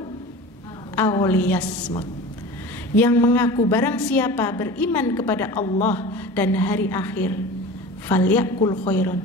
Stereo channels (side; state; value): both; normal; correlation 0.35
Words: aw liyasmut. Yang mengaku barang siapa beriman kepada Allah dan hari akhir, falyakul khairan,